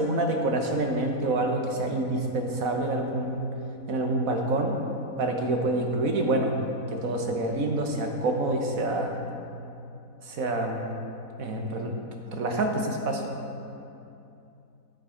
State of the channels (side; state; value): left; late; 4.1 ms